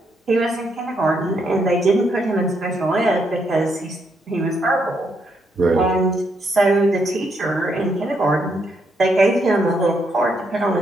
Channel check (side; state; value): both; normal; correlation 0.76